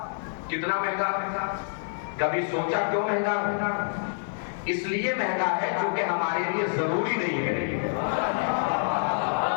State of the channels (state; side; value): silent; right; digital silence